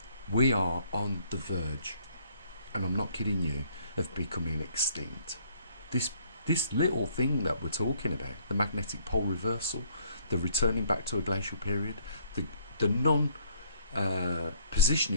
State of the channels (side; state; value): both; inverted; correlation -0.62